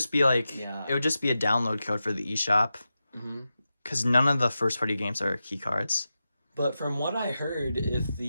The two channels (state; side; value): inverted; both; correlation -0.91